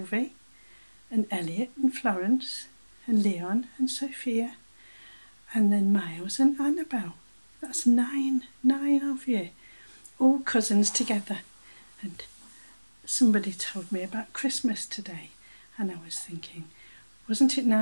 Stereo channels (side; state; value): both; inverted; correlation -1.00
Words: and Elliot and Florence and Leon and Sophia and then Miles and Annabelle. That's nine of you, all cousins together. And somebody told me about Christmas today, and I was thinking, wasn't it